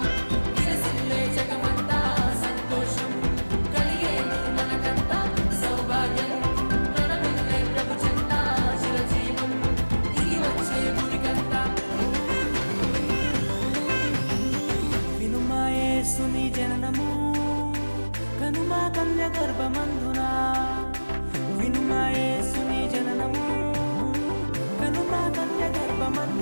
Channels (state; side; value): inverted; both; correlation -1.00